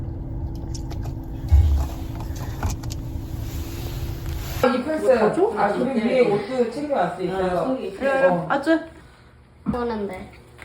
이 플스. 아, 그리고 위에 옷도 챙겨왔어. 있어요. 그래. 아주. 오는데.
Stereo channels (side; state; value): both; identical; correlation 1.00